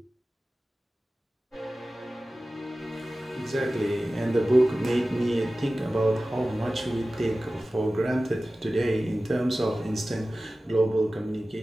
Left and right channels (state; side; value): normal; both; correlation 0.96